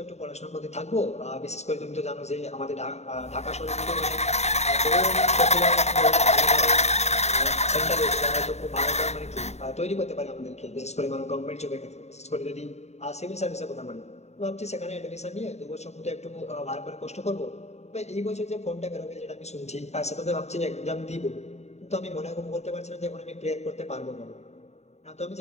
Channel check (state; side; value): late; right; 0.32 ms